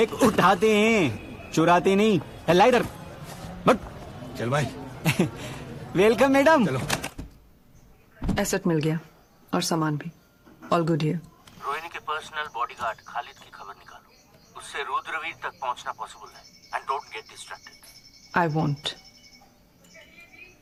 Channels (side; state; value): both; identical; correlation 1.00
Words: उठाते हैं, चुराते नहीं। ला इधर बट। चल भाई। Welcome madam. चलो। एसेट मिल गया और सामान भी। All good here. रोहिणी के पर्सनल बॉडीगार्ड खालिद की खबर निकालो। उससे रुद्रवीर तक पहुंचना पॉसिबल है। And don't get distracted. I want.